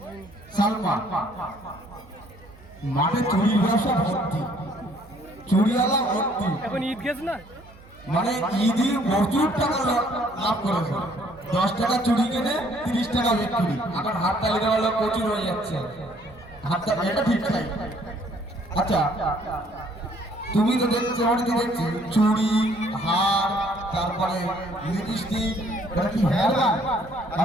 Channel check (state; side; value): noise; right; hum, 22 dB below the sound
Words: সালমা, মাঠে চুরির ব্যবসা ভর্তি, চুরিওয়ালা ভর্তি। এখন ঈদ গেছে না মানে ঈদে প্রচুর টাকা লাভ করেছে। 10 টাকা চুরি কিনে 30 টাকা বিক্রি। এখন হাত তালি দেওয়া লোক প্রচুর হয়ে যাচ্ছে। হাত তালি এটা ঠিক নাই। আচ্ছা তুমি তো দেখছো, আমি তো দেখছি চুড়ি, হার, তারপরে লিপস্টিক, এটা কি হেয়ার ব্যান্ড?